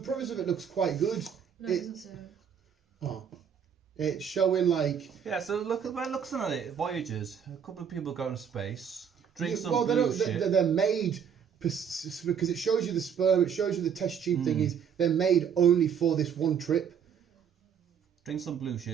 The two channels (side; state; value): left; quieter; 7.7 dB